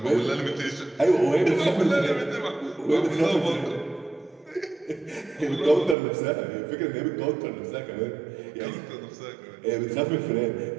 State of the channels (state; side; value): drops out; left; at 6.0 s